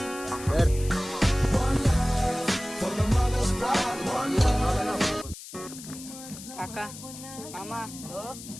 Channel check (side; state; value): left; noise; hiss, 14 dB below the sound